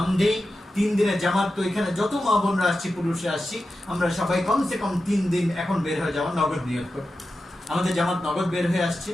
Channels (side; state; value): both; normal; correlation 0.92